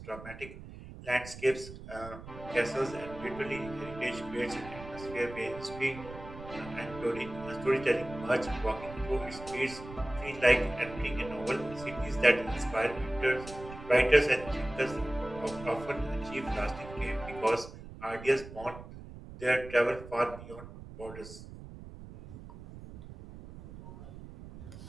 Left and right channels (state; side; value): noise; right; rumble, 14 dB below the sound